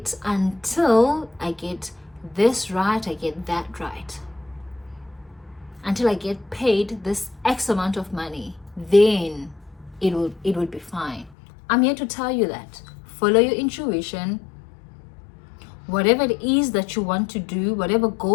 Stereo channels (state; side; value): drops out; right; at 11.4 s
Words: until I get this right, I get that right. Until I get paid this X amount of money, then it will be fine. I'm here to tell you that. Follow your intuition. Whatever it is that you want to do, whatever